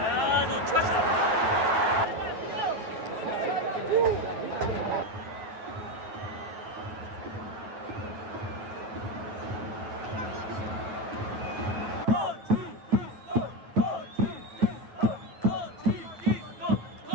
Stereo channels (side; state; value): left; late; 9.3 ms